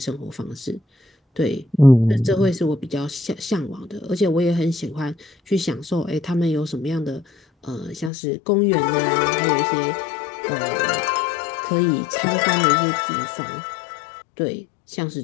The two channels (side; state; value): right; drops out; at 8.1 s